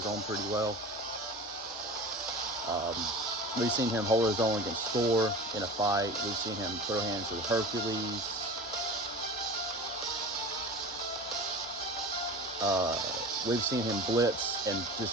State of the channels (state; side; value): normal; both; correlation 0.35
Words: own pretty well. We've seen him hold his own against Thor in a fight. We've seen him throw hands with Hercules. We've seen him blitz and